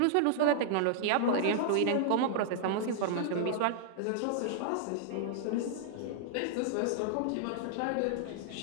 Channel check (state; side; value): different; both; correlation -0.01